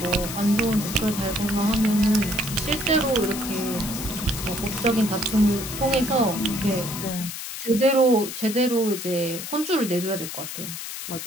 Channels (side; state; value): left; noise; hiss, 8 dB below the sound